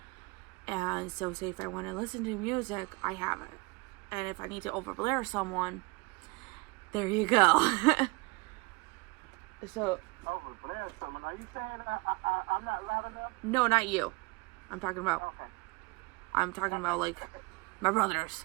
And so, say if I want to listen to music, I have it. And if I need to overblare someone, there you go. So. Overblare someone? Are you saying I'm not loud enough? No, not you. I'm talking about. Okay. I'm talking about like my brothers,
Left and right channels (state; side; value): quieter; left; 26.2 dB